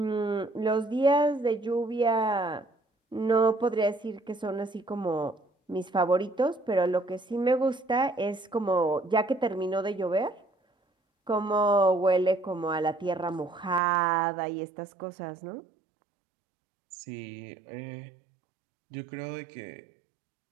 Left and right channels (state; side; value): drops out; left; at 13.8 s